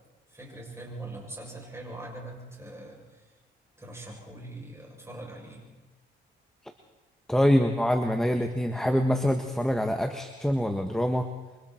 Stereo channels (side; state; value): both; normal; correlation 0.93